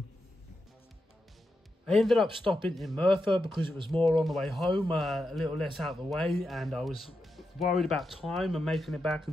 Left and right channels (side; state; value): both; normal; correlation 0.87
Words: I ended up stopping in Merthyr because it was more on the way home, a little less out of the way, and I was worried about time and making it back in